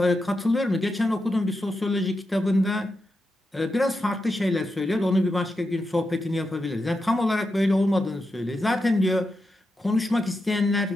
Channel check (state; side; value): normal; both; correlation 0.87